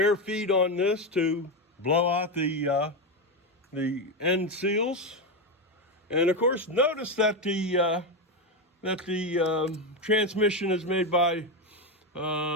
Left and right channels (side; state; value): both; normal; correlation 0.11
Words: feed on this to blow out the end seals, and of course, notice that the transmission is made by